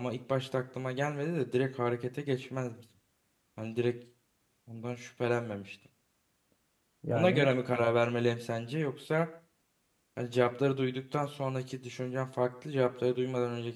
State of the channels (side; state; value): both; identical; correlation 1.00